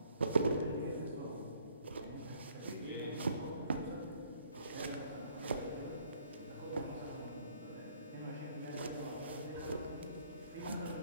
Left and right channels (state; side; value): inverted; both; correlation -0.62